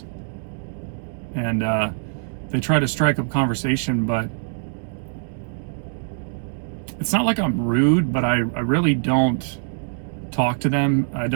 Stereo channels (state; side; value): silent; left; digital silence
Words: and they try to strike up conversation, but it's not like I'm rude, but I really don't talk to them. I